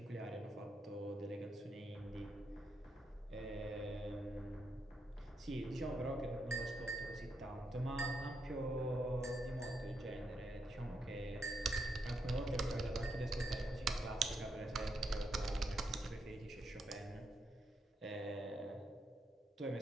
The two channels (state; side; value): normal; both; correlation 0.81